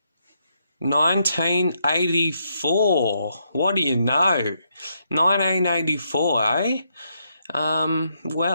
1984. What do you know? 1984, eh?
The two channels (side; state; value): both; inverted; correlation -0.78